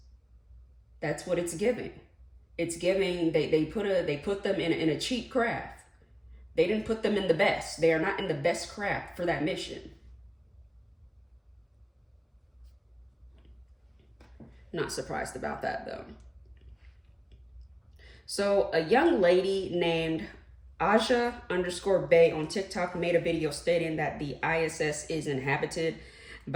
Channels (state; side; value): identical; both; correlation 1.00